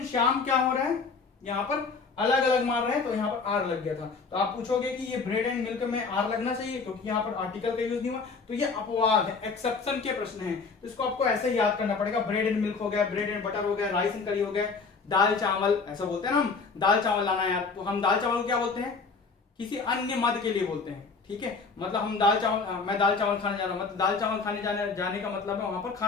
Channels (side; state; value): right; quieter; 4.7 dB